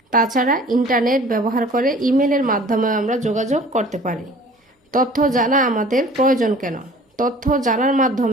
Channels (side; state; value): both; normal; correlation 0.47